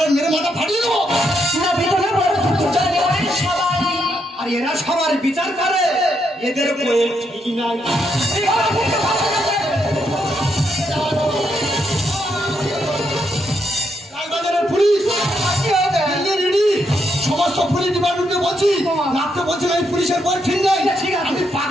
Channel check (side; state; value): both; normal; correlation 0.78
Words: মেরে মাথা ফাটিয়ে দেবো। আর এরা সবার বিচার করে, এদের ঠিক নাই। লালবাজারের পুলিশ সমস্ত পুলিশ ডিপার্টমেন্টকে বলছি, রাত্রে বলছি এই পুলিশের বই ঠিক নাই। আমি